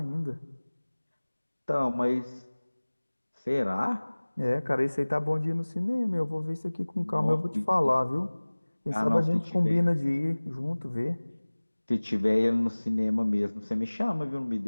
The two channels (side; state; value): both; inverted; correlation -1.00